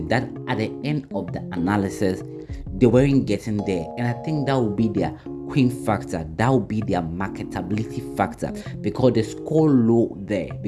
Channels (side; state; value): both; identical; correlation 1.00